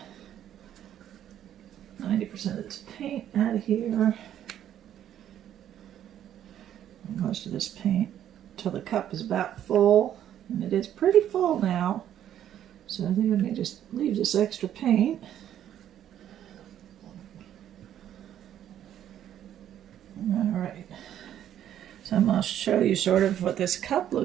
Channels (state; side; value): quieter; left; 10.8 dB